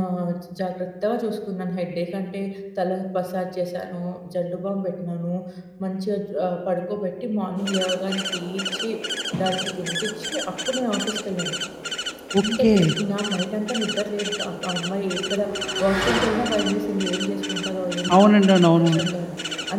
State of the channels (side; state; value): both; identical; correlation 1.00